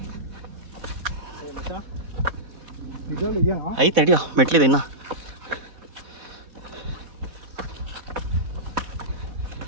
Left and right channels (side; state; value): left; late; 4.0 ms